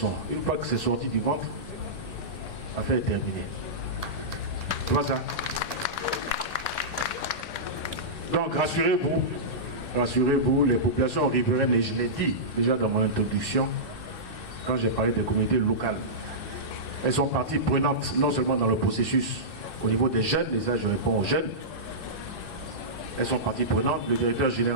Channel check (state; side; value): late; right; 2.6 ms